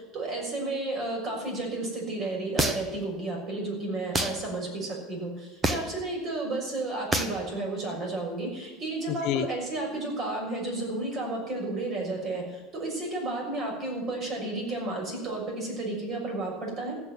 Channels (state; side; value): normal; both; correlation 0.37